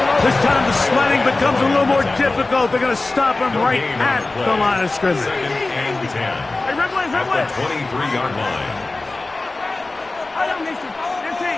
This time the sledding becomes a little more difficult. They're going to stop him right at the line of scrimmage. Second and 10 at the 23-yard line.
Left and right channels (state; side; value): quieter; right; 3.2 dB